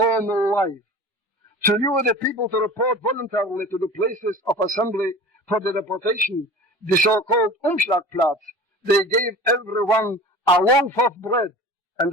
life. To lure the people to report voluntarily to the places of assembly for the deportation, the so-called Umschlagplatz, they gave everyone a loaf of bread and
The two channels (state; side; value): normal; both; correlation 0.38